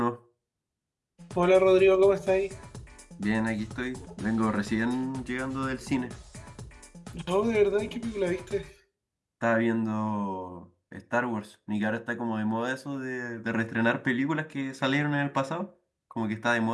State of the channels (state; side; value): identical; both; correlation 1.00